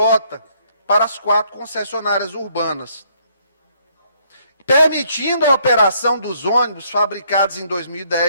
para as 4 concessionárias urbanas, permitindo a operação dos ônibus fabricados em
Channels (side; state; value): both; inverted; correlation -0.67